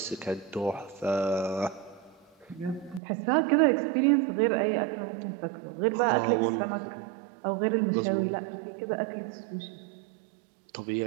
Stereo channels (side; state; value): left; drops out; at 3.0 s